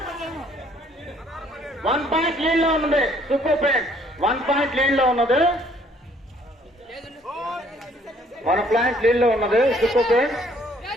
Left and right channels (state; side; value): normal; both; correlation 0.62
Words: 1 point lead లో ఉన్నది సూపర్ ఫ్రెండ్స్ 1 పాయింట్ లీడ్ లో ఉన్నది 1 పాయింట్ లీడ్ లో ఉన్నది సూపర్ ఫ్రెండ్స్